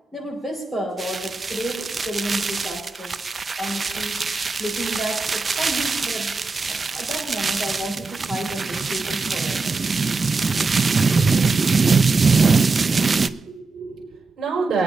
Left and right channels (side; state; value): left; quieter; 3.9 dB